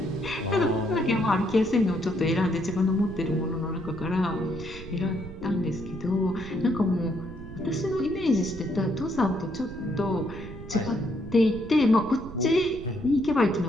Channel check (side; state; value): right; noise; rumble, 13 dB below the sound